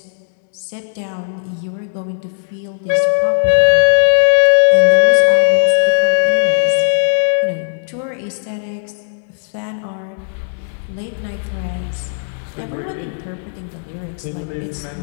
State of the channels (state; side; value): silent; right; digital silence